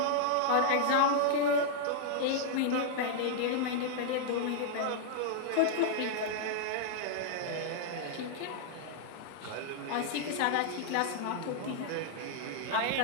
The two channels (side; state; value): both; different; correlation -0.01